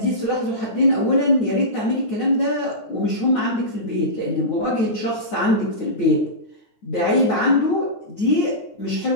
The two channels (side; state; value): right; late; 9.4 ms